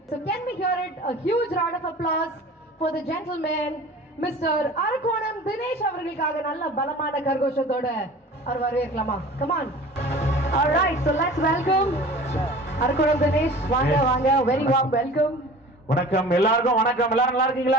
So can we hear it? A huge round of applause for the gentleman, Mr. Arakkonam Dinesh அவர்களுக்காக நல்ல பலமான கரகோஷத்தோட அவர் வரவேற்கலாமா? Come on. All right, so let's welcome Arakkonam Dinesh. வாங்க வாங்க, very warm welcome. வணக்கம் எல்லாருக்கும். வணக்கம். எல்லாரும் நல்லா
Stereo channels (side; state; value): both; normal; correlation 0.42